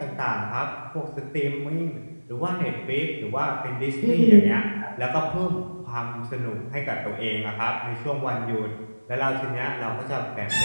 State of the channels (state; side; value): inverted; both; correlation -1.00